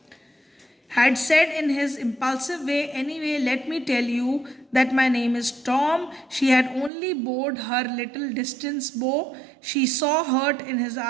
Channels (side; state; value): left; drops out; at 6.9 s